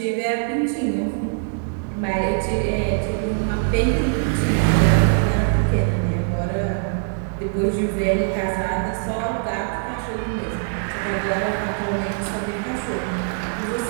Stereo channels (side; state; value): left; silent; digital silence